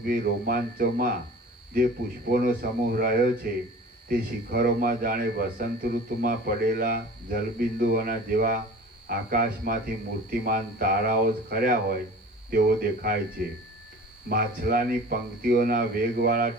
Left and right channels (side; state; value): both; normal; correlation 0.41